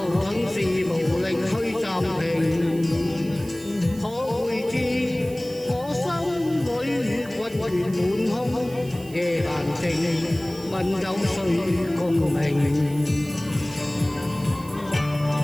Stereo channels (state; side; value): noise; right; hiss, 20 dB below the sound